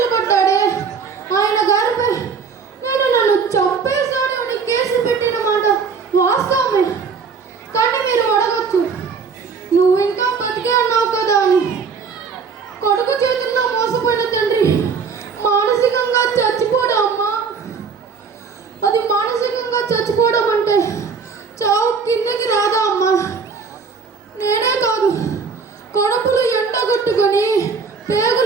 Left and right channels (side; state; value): left; quieter; 5.5 dB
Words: ఆయన గారిపై నన్ను చంపేశాడు అని కేసు పెట్టిన మాట వాస్తవమే. కానీ మీరు అడగచ్చు, నువ్వు ఇంకా బతికే ఉన్నావు కదా అని. కొడుకు చేతుల్లో మోసపోయిన తండ్రి మానసికంగా చచ్చిపోవడం అమ్మా. అది మానసికంగా చచ్చిపోవడం అంటే చావు కిందకి రాదా అమ్మా? నేనే కాదు, కడుపులు ఎండగొట్టుకొని